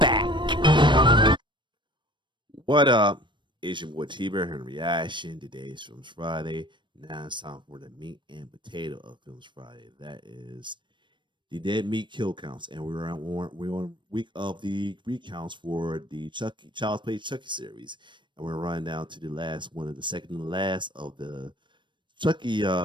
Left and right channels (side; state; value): left; late; 0.23 ms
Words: What up? It's your boy T-Bear here in Reaction. Today's Films Friday. Now it's time for the meat and potato of Films Friday. That is the dead meat kill counts. And we're on week of the recounts for the Chucky Child's Play Chucky series. And we're running down to the last one of the second and last of the Chucky